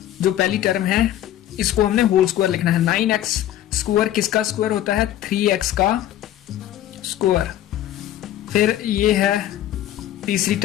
जो पहली टर्म है इसको हमने होल स्क्वायर लिखना है। 9x स्क्वायर किसका स्क्वायर होता है? 3x का स्क्वायर। फिर ये है तीसरी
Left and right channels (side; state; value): right; quieter; 12.6 dB